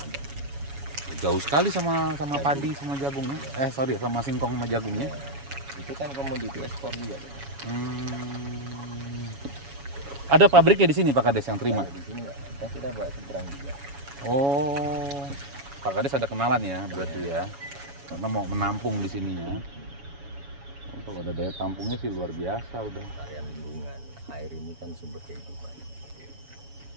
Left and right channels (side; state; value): left; late; 7.2 ms